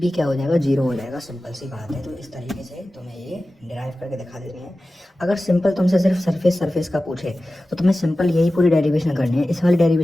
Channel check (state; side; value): normal; both; correlation 0.95